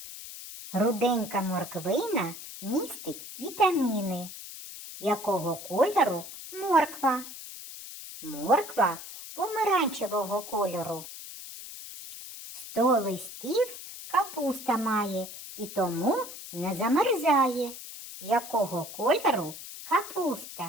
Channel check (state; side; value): noise; left; hiss, 12 dB below the sound